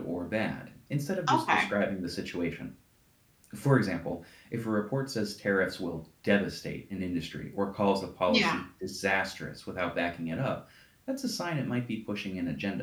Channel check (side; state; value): both; identical; correlation 1.00